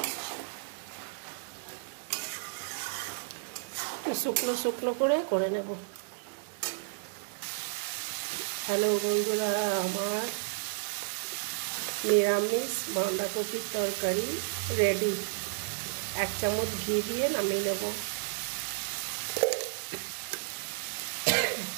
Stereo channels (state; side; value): silent; left; digital silence